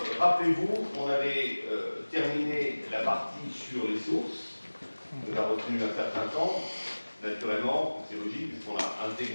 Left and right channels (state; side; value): inverted; both; correlation -1.00